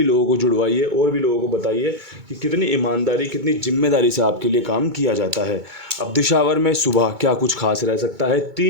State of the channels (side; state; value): left; late; 2.3 ms